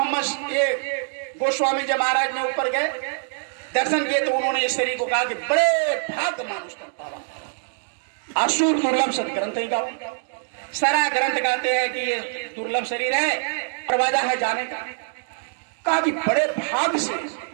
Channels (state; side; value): silent; left; digital silence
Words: ये गोस्वामी जब महाराज ने ऊपर गए दर्शन किए तो उन्होंने इस शरीर को कहा कि बड़े भाग्य मानुष कर पावा, असुर दुर्लभ सदग्रंथ ही गाओ। सारा ग्रंथ कहते हैं कि ये दुर्लभ शरीर है, दरवाजा है जाने का। कहा कि बड़े भाग्य से